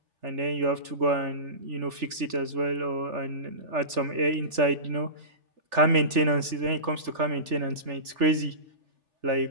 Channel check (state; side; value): late; left; 3.4 ms